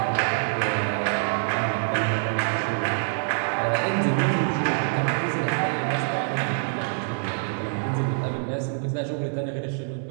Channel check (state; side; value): silent; left; 61 dB below the other